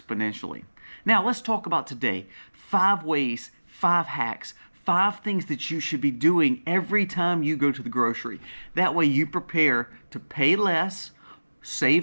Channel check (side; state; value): both; inverted; correlation -1.00